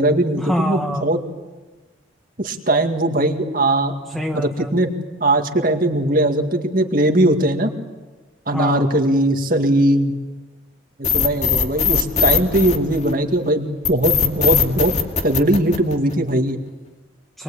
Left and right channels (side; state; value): both; normal; correlation 0.37